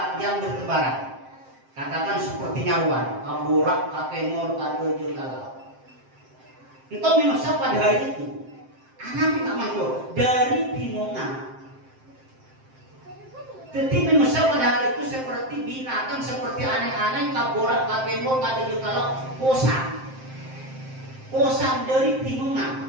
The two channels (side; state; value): left; late; 7.6 ms